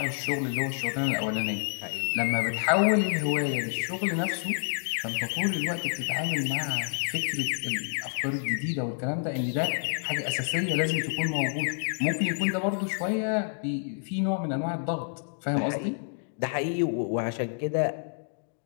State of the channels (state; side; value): silent; right; digital silence